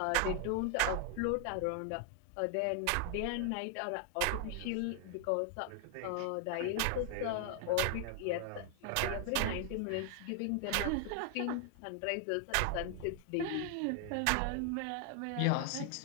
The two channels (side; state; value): both; different; correlation 0.00